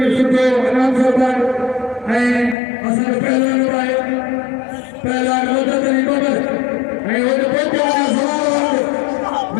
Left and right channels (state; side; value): drops out; right; at 2.6 s